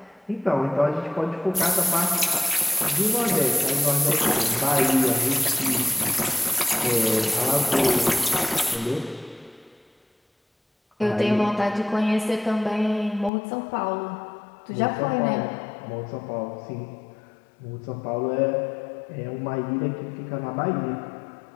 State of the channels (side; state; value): right; drops out; at 13.3 s